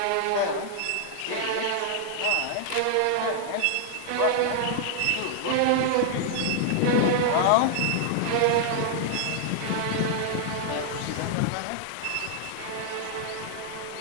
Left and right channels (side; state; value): both; different; correlation -0.01